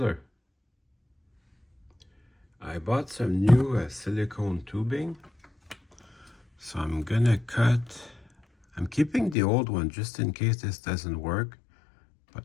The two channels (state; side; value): drops out; right; at 9.3 s